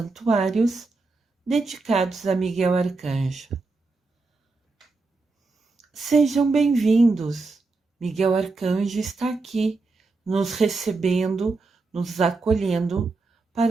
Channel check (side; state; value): left; quieter; 3.7 dB